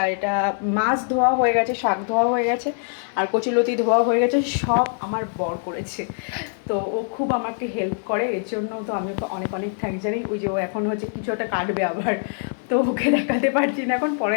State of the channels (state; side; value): silent; right; 61 dB below the other